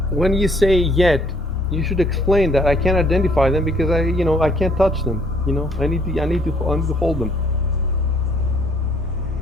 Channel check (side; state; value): both; normal; correlation 0.63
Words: When you say yet, you should explain that I can't identify them because I can't touch them. I need to hold them.